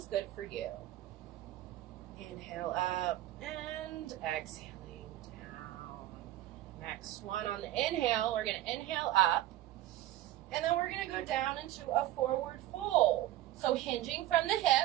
good for you. Inhale up and exhaling down. Next one on the inhale, we're going to inhale up. And then we're going to go down into a forward fold. So hinging from the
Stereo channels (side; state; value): left; quieter; 14.6 dB